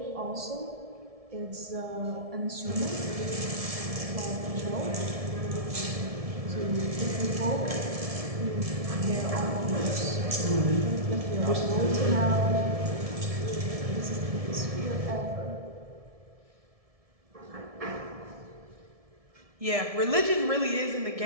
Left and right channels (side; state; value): left; late; 1.7 ms